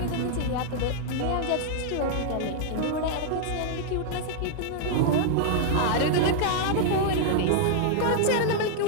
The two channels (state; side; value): different; both; correlation -0.01